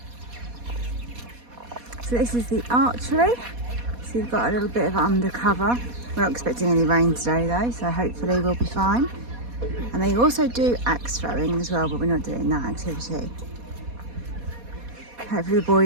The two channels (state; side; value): late; left; 4.2 ms